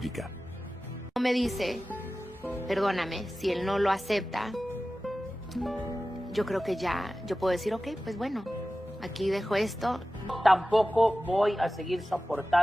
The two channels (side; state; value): both; normal; correlation 0.95